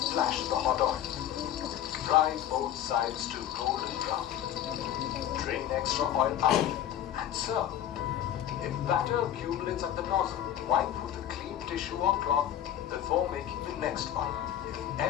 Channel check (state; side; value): quieter; right; 11.2 dB